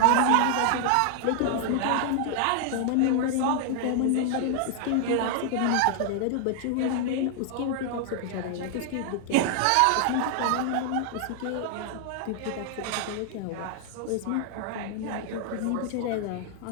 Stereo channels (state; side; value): different; both; correlation 0.00